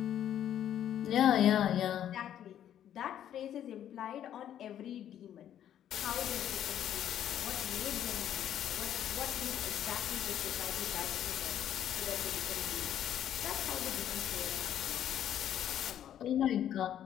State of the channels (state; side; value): quieter; right; 10.6 dB